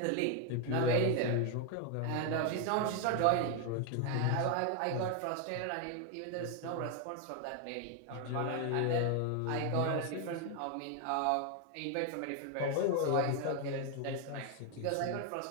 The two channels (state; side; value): different; both; correlation 0.01